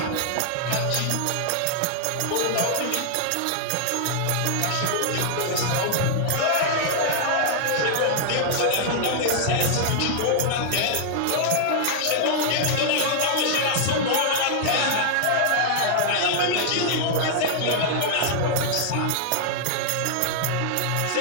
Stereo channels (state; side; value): different; both; correlation -0.01